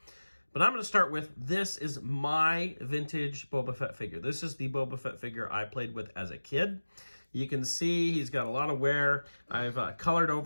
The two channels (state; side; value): inverted; both; correlation -1.00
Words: But I'm going to start with, this is my vintage Boba Fett figure. This is the Boba Fett figure I played with as a kid. You can see he's got a lot of wear. I've colored